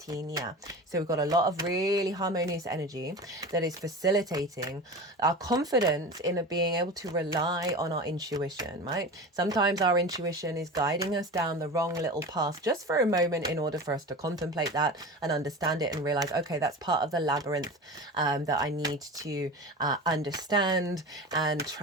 So we've got a lot of really harmonious energy that is facilitating our confidence in being able to rely on our intuition, right? Sometimes our intuition is guiding us down the wrong little path just for a moment in order for us to contemplate that and understand it and realize, okay, that's part of the labyrinth that I need to understand and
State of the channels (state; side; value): normal; both; correlation 0.31